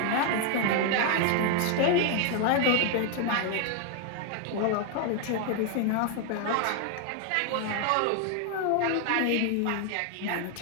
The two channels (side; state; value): both; different; correlation 0.00